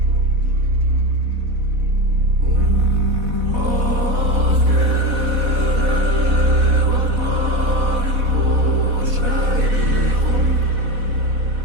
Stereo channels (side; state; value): left; late; 4.1 ms